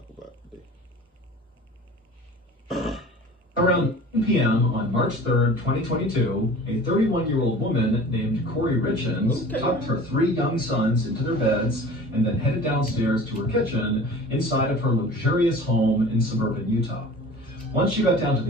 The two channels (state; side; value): normal; both; correlation 0.41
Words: about today. Around 10 p.m. on March 3rd, 2022, a 31-year-old woman named Corey Richens tucked her 3 young sons into their beds and then headed downstairs to her kitchen inside of her luxurious home in suburban Utah. Once she got down to